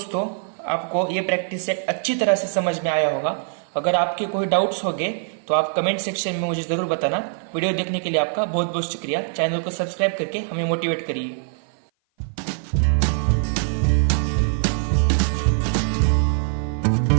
आपको ये प्रैक्टिस सेट अच्छी तरह से समझ में आया होगा। अगर आपके कोई डाउट्स होंगे तो आप कमेंट सेक्शन में मुझे जरूर बताना। वीडियो देखने के लिए आपका बहुत बहुत शुक्रिया। चैनल को सब्सक्राइब करके हमें मोटिवेट करिए।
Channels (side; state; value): left; silent; 56 dB below the other